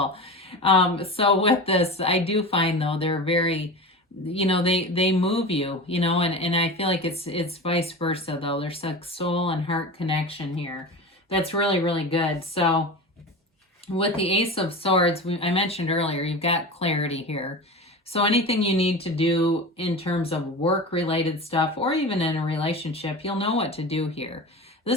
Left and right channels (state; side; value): normal; both; correlation 0.29